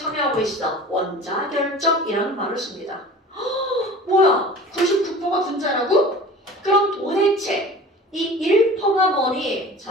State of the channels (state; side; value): normal; both; correlation 0.41